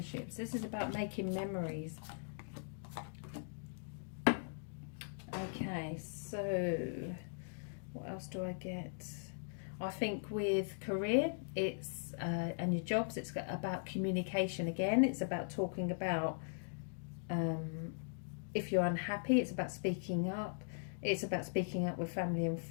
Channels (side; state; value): right; silent; digital silence